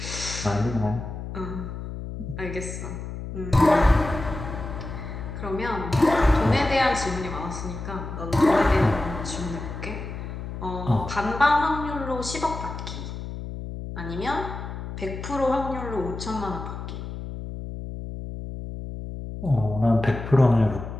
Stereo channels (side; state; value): left; noise; hum, 8 dB below the sound